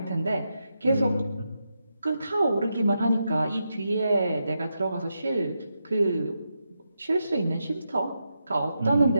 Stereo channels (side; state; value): both; inverted; correlation -0.86